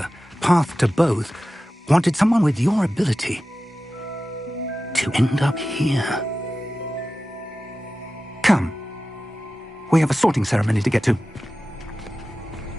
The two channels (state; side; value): normal; both; correlation 0.94